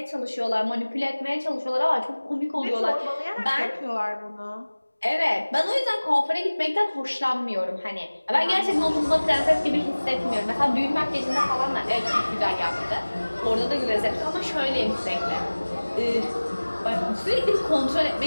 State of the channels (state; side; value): inverted; both; correlation -1.00